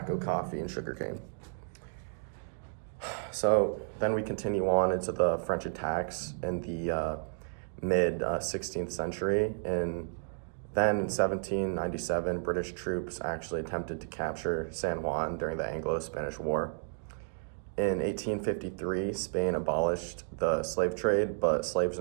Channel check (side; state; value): left; silent; digital silence